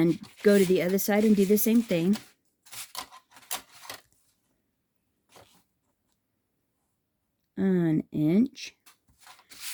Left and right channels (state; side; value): identical; both; correlation 1.00